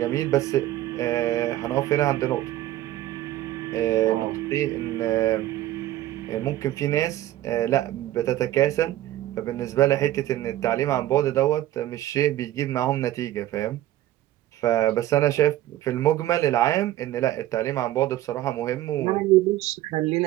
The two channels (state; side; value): quieter; left; 14.3 dB